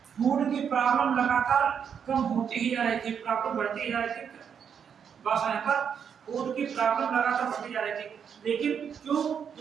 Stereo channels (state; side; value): quieter; left; 7.5 dB